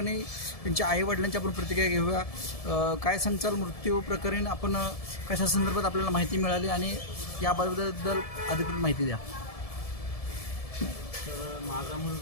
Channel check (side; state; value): right; late; 1.7 ms